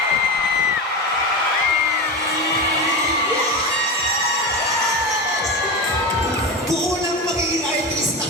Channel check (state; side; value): normal; both; correlation 0.21